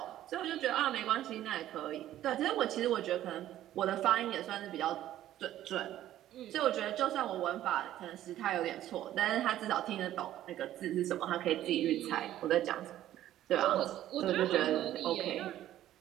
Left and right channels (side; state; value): left; quieter; 12.9 dB